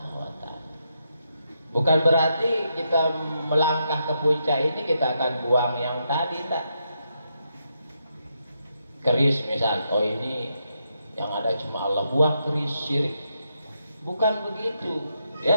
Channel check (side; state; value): both; inverted; correlation -0.81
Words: wa Ta'ala. Bukan berarti kita melangkah ke puncak ini kita akan buang yang tadi, tak. Keris misal, oh ini yang ada cuma Allah, buang keris syirik. Bukan begitu